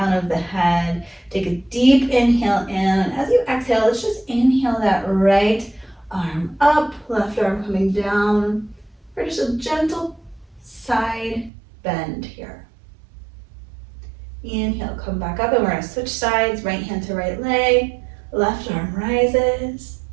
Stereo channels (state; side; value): drops out; left; at 11.5 s